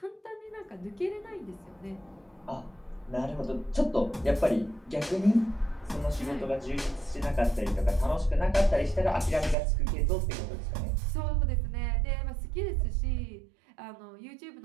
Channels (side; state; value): left; drops out; at 9.6 s